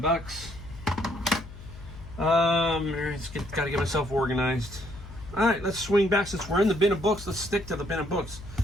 Gotta get myself organized. All right, let's swing back. Since we're in the bin of books, let's stick to the bin of books.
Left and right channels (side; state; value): left; noise; hum, 15 dB below the sound